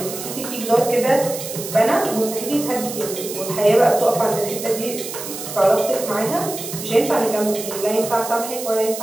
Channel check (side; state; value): right; noise; hiss, 9 dB below the sound